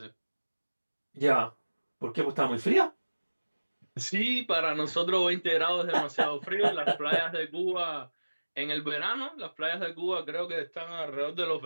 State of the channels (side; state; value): both; inverted; correlation -1.00